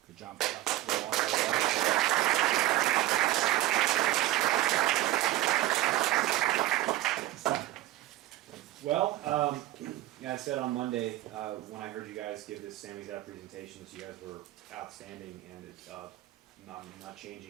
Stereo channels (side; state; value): left; quieter; 15.5 dB